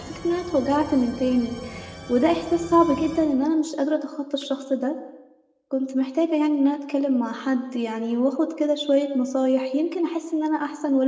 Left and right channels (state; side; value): identical; both; correlation 1.00